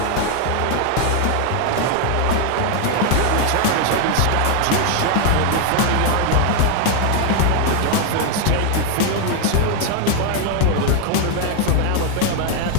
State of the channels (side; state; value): both; different; correlation 0.01